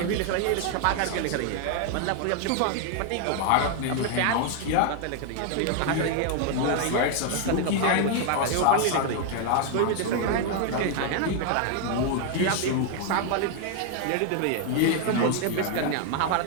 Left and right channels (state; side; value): different; both; correlation 0.00